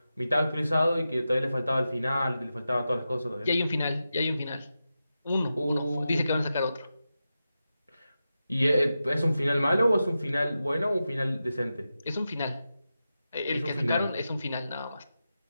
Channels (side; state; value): both; inverted; correlation -0.91